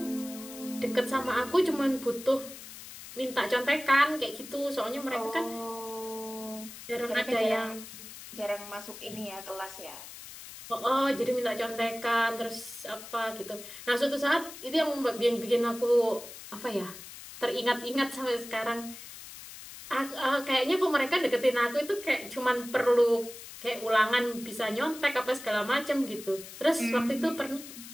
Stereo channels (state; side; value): noise; left; hiss, 14 dB below the sound